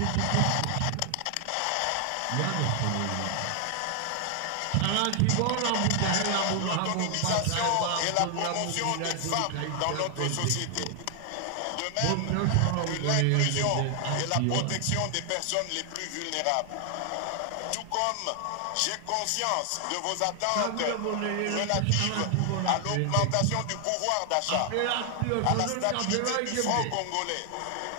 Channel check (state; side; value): different; both; correlation 0.00